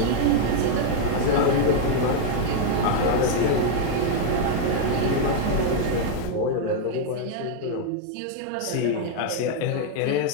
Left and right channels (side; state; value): both; different; correlation 0.00